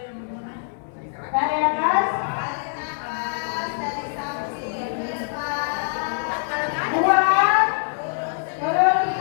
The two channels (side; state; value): right; silent; digital silence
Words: tarik nafas, buang, terus,